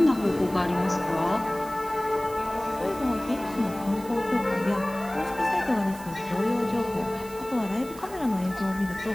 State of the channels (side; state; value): right; noise; hiss, 18 dB below the sound